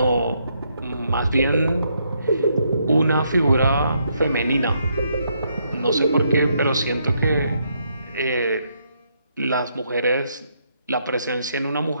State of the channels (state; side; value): inverted; both; correlation -0.75